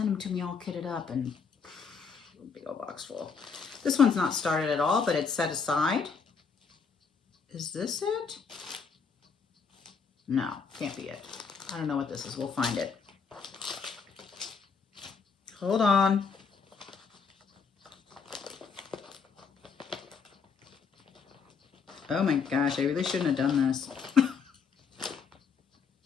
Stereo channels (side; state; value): right; quieter; 5.7 dB